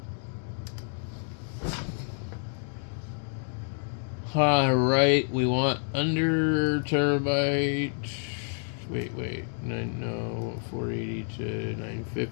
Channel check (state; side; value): silent; right; 59 dB below the other